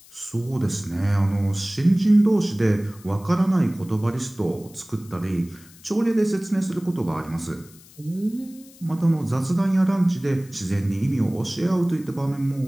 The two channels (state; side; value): noise; left; hiss, 24 dB below the sound